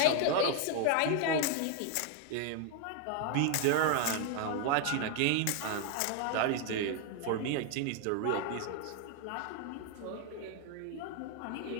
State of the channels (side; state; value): both; different; correlation 0.00